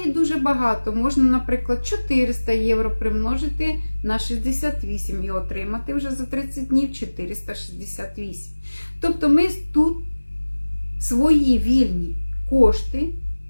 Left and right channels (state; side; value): inverted; both; correlation -1.00